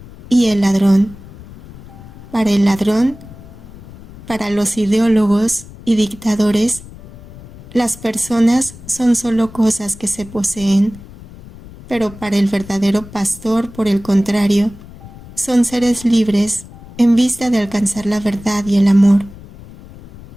y el ladrón. Para el ladrón, para los ideólogos y dictadores, las personas son solo cosas que se poseen, pero para el verdadero pastor, por el contrario, son seres libres en vista de alcanzar la verdad y el amor.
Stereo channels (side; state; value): left; noise; rumble, 18 dB below the sound